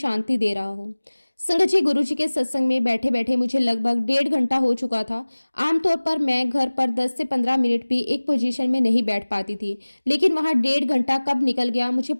दे रहा हो। संगत जी, गुरुजी के सत्संग में बैठे बैठे मुझे लगभग 1.5 घंटा हो चुका था। आमतौर पर मैं घर पर 10 से 15 मिनट भी एक पोजीशन में नहीं बैठ पाती थी, लेकिन वहां 1.5 घंटा कब निकल गया मुझे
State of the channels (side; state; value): both; inverted; correlation -1.00